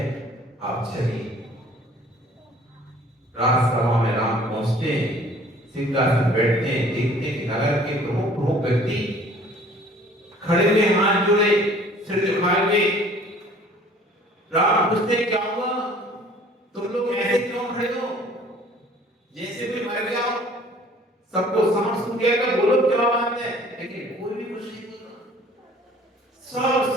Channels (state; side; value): normal; both; correlation 0.53